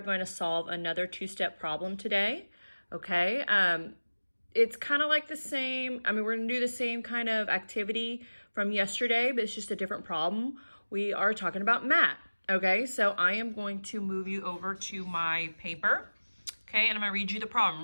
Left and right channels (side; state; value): both; inverted; correlation -1.00